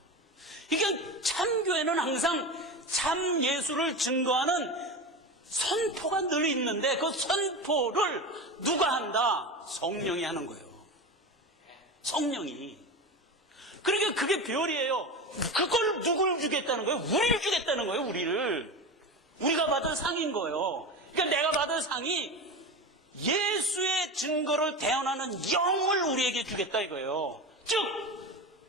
그러니까 참교회는 항상 참 예수를 증거하는 선포가 늘 있는데 그 선포를 누가 한다? 성령이 하는 거예요. 성령이. 그러니까 그게 별이에요. 그걸 누굴 주겠다는 거예요? 우리를 주겠다는 거예요. 우리를. 우리가 받을 상인 거예요. 그러니까 내가 받을 상이 예수의 증거를 대언하는 영을 우리에게 주겠다 이거예요. 즉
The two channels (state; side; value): normal; both; correlation 0.25